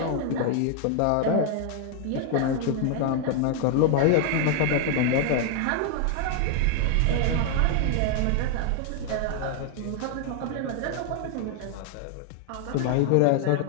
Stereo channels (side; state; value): both; different; correlation 0.00